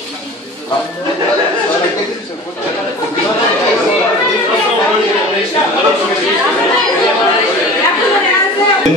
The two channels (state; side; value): normal; both; correlation 0.39